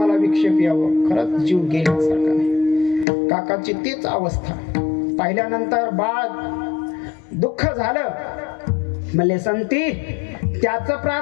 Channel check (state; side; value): drops out; right; at 3.1 s